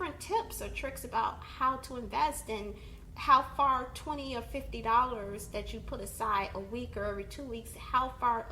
tips or tricks about how to invest, and how far $20 or $50 that you put aside a week or every 2 weeks, how far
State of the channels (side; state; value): both; identical; correlation 1.00